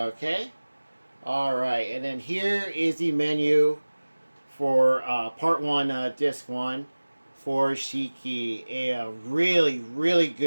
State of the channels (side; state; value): both; inverted; correlation -1.00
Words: Alright, and then here is the menu for part 1, disc 1 for Shiki. A really, really